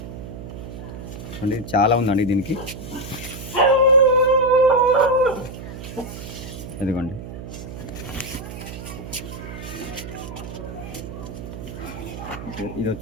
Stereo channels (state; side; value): noise; right; hum, 10 dB below the sound